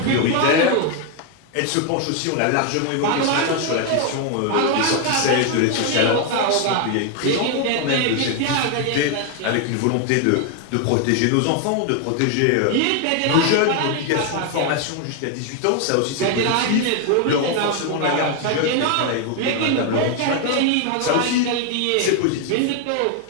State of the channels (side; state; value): both; different; correlation 0.01